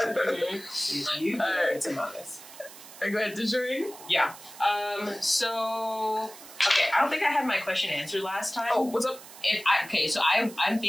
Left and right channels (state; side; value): noise; right; hiss, 17 dB below the sound